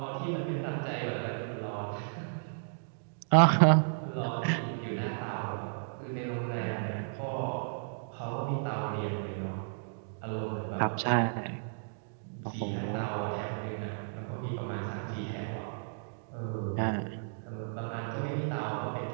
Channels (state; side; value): silent; left; digital silence